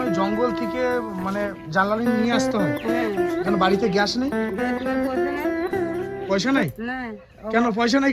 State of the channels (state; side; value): identical; both; correlation 1.00